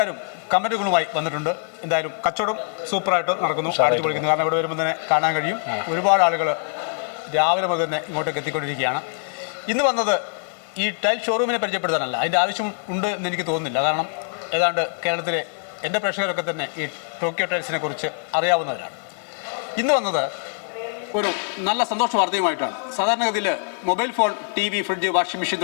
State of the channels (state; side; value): silent; right; digital silence